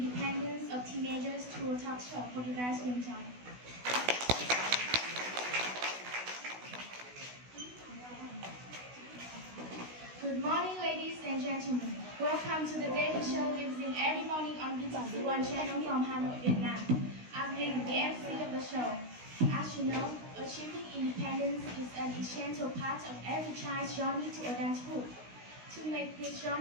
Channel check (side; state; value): left; late; 16 ms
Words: of teenagers through a talk show. Hope you guys will enjoy. Good morning, ladies and gentlemen. Welcome to the daily show lives in every morning on BTC1 channel from Hanoi, Vietnam. I'm Linh, the MC of the show. As you know, achieving independence is an essential part of every child's journey to adulthood. To make this